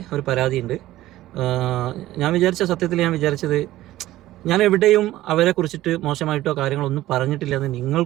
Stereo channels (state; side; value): quieter; left; 15.4 dB